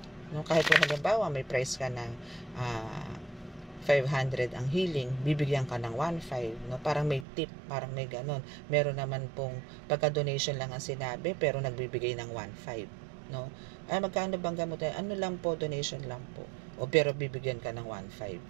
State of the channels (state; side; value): drops out; left; at 7.2 s